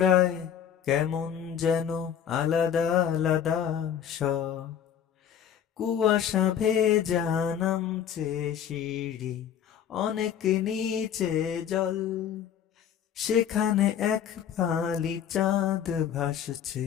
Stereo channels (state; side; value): quieter; right; 9.0 dB